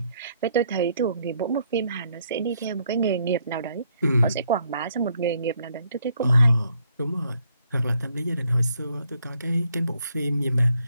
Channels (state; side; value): inverted; both; correlation -0.70